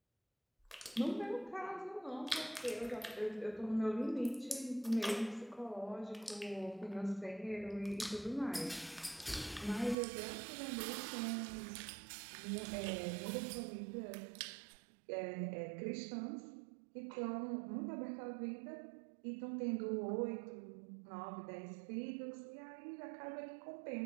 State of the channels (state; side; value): drops out; left; at 10.0 s